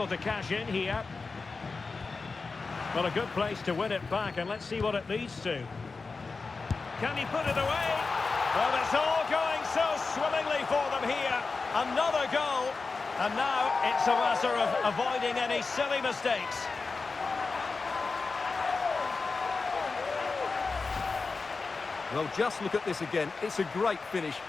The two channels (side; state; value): right; quieter; 4.2 dB